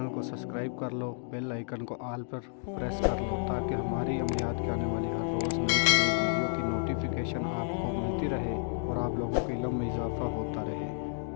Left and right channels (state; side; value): silent; right; digital silence